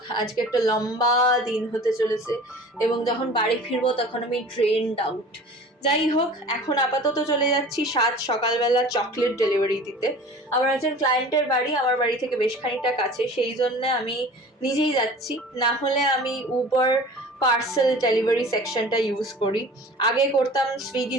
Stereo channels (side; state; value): both; normal; correlation 0.42